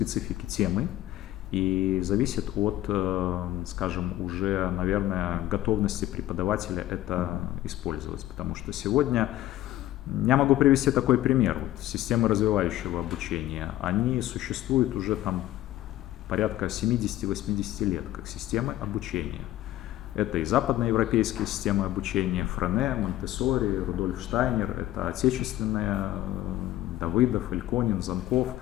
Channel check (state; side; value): quieter; right; 14.6 dB